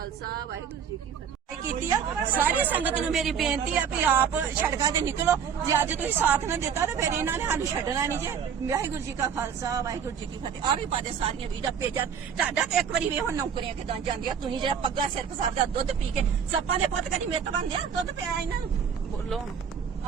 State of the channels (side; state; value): left; quieter; 7.4 dB